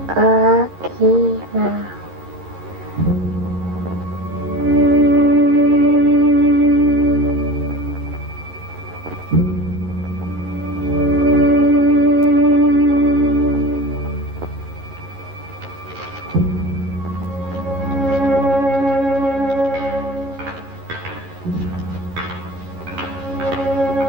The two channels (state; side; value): late; left; 11 ms